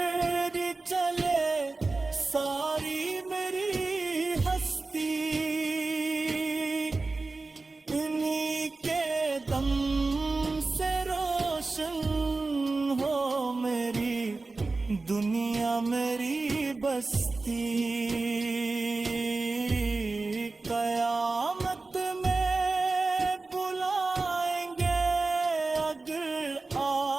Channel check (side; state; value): left; quieter; 3.6 dB